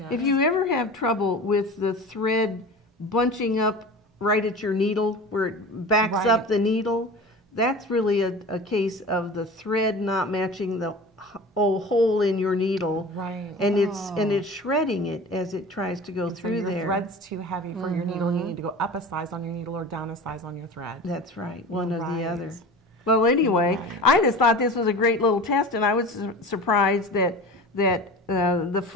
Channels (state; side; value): normal; both; correlation 0.35